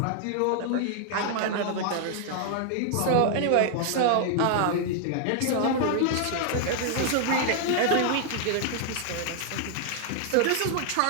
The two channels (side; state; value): both; different; correlation 0.00